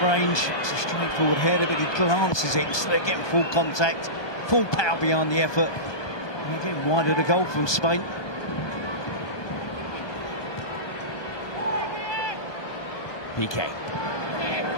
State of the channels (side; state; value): right; late; 1.2 ms